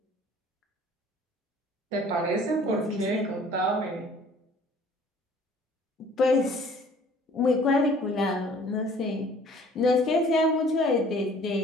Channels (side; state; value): both; normal; correlation 0.53